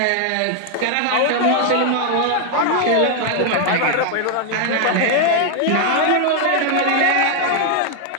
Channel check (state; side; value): different; both; correlation 0.00